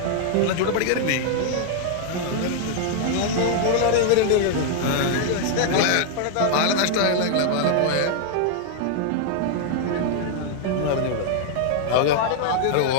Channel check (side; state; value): both; different; correlation 0.00